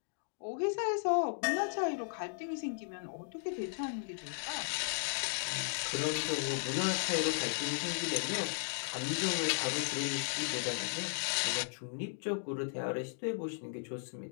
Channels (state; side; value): silent; right; digital silence